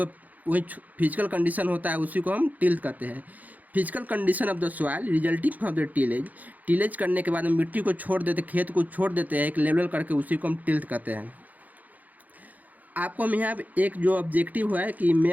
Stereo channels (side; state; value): left; late; 0.080 ms